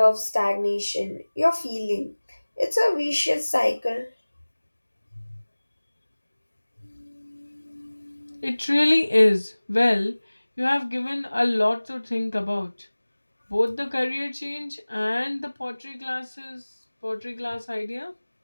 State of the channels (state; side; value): inverted; both; correlation -1.00